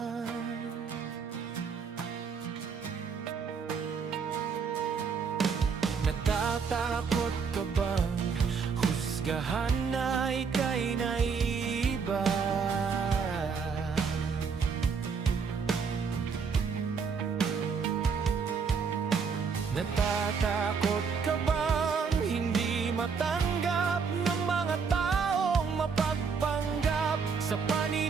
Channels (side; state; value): left; quieter; 5.7 dB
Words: Natatakot ka bang husgahan na ika'y naiiba? Natatakot ka bang hindi matanggap ng mga taong mapagpanggap sa